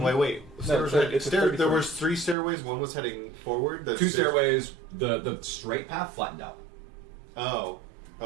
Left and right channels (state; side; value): drops out; left; at 2.4 s